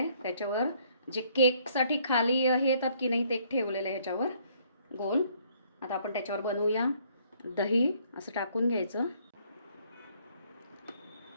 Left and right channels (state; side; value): inverted; both; correlation -0.64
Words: त्याच्यावर जे केकसाठी खाली हे येतात की नाही ते ठेवलेलं आहे ह्याच्यावर गोल. आता आपण त्याच्यावर बनवूया. दही असं टाकून घ्यायचं.